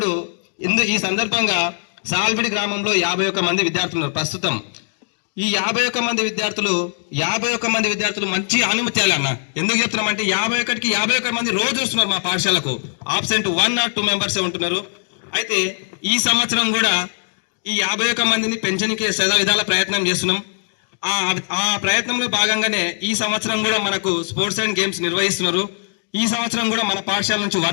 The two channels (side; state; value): right; silent; digital silence